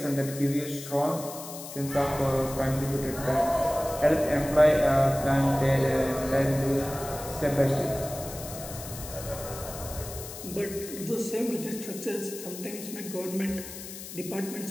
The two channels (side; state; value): left; noise; hiss, 12 dB below the sound